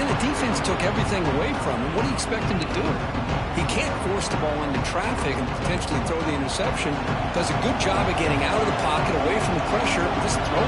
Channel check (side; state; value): both; identical; correlation 1.00